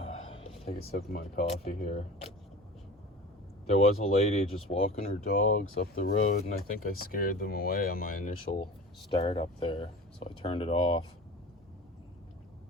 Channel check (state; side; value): normal; both; correlation 0.37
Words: Take a sip of my coffee here. There was a lady just walking her dogs up the road, and I think I scared them away on my initial start up there, so I turned it off.